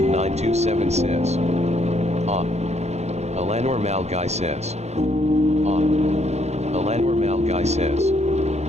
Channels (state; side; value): late; left; 0.32 ms